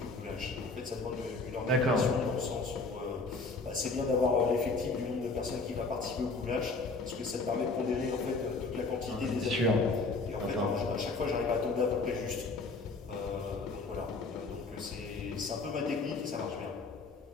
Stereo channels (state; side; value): quieter; right; 3.7 dB